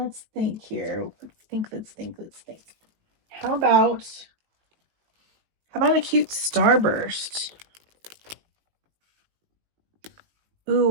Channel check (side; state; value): left; late; 19 ms